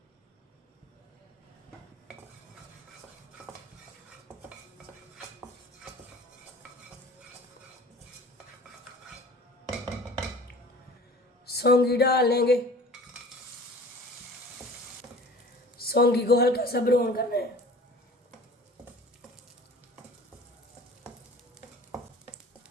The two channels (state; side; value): normal; both; correlation 0.44